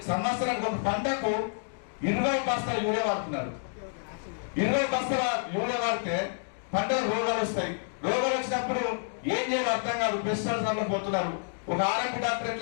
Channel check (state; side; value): silent; right; digital silence